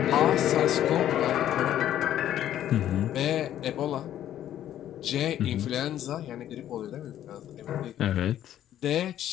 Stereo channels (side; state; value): right; quieter; 11.6 dB